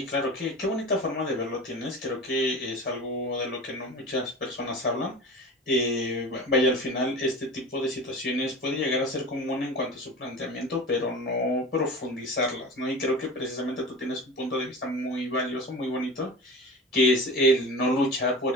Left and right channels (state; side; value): normal; both; correlation 0.33